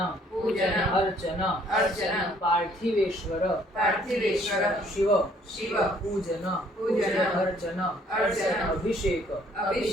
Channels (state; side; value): normal; both; correlation 0.62